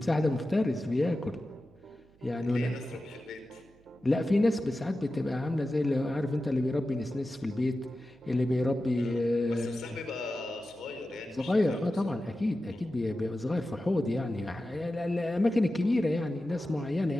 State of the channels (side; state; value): right; noise; hum, 29 dB below the sound